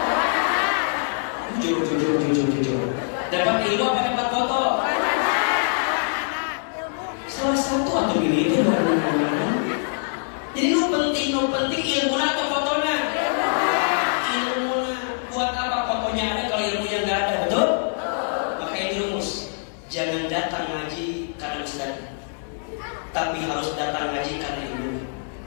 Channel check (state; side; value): silent; right; 59 dB below the other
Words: Jujur. Dapat ilmu apa dapat foto? Salah satu atau pilih itu baru. Jadi nu penting ilmu atau fotonya? Ilmu buat apa fotonya ada kalau ilmunya nggak ada, betul? Maka ini rumus, jangan datang ngaji karena ustaz, tapi harus datang ngaji karena ilmu.